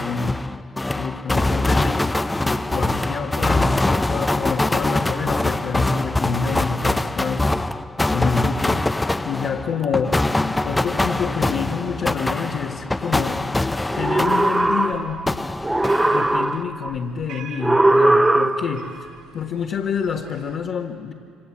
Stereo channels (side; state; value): both; normal; correlation 0.91